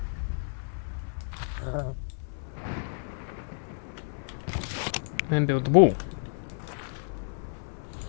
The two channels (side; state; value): right; silent; digital silence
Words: And build the wall.